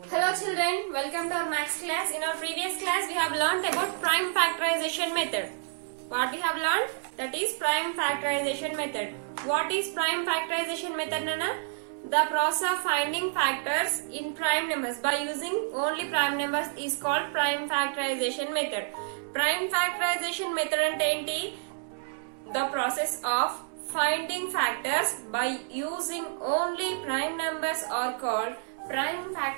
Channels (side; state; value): left; silent; digital silence